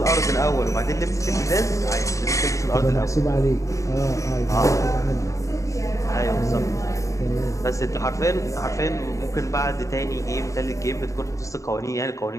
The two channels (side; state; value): right; late; 0.15 ms